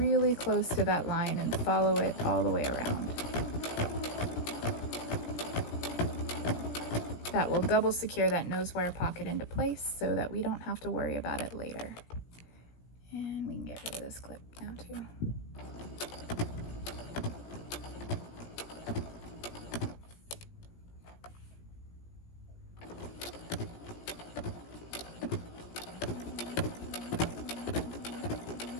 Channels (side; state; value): right; late; 17 ms